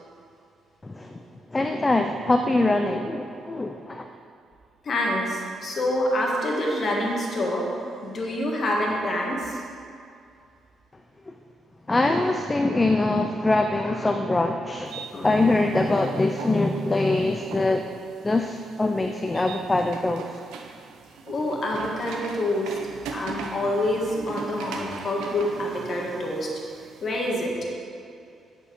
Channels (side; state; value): both; normal; correlation 0.86